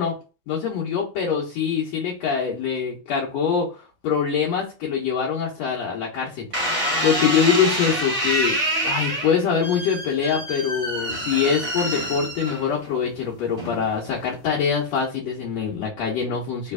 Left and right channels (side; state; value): right; quieter; 4.8 dB